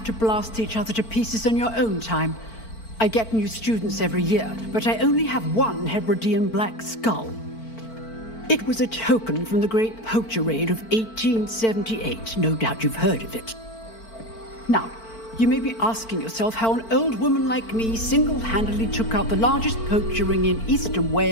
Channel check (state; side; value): late; right; 4.5 ms